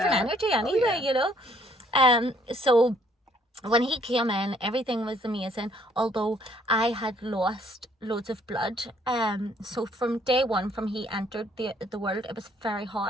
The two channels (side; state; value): both; normal; correlation 0.64